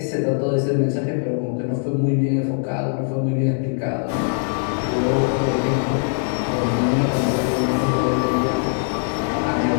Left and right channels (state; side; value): silent; right; 65 dB below the other